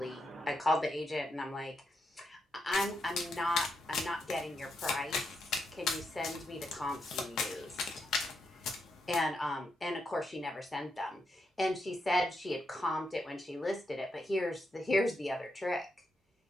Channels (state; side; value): normal; both; correlation 0.83